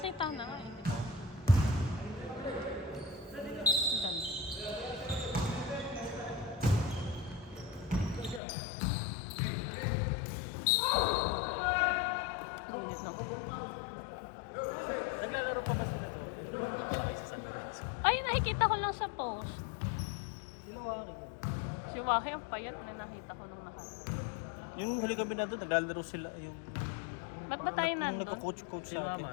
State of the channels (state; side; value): drops out; right; at 8.4 s